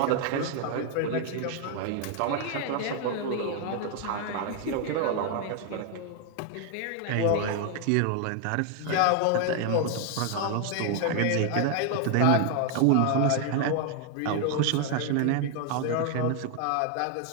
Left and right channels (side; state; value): both; different; correlation 0.00